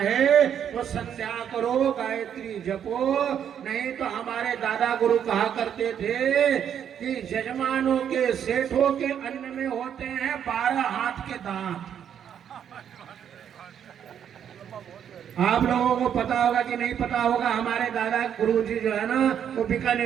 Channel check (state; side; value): quieter; left; 8.9 dB